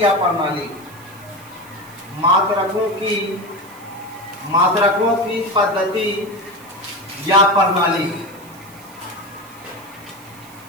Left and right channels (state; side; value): noise; right; hiss, 23 dB below the sound